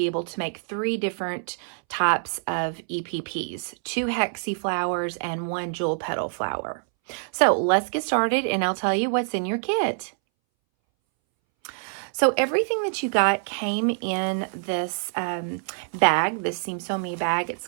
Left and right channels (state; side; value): silent; left; 61 dB below the other